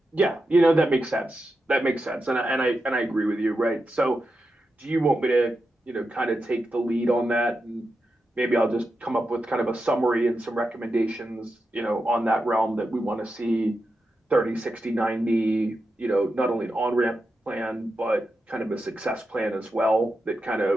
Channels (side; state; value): both; normal; correlation 0.88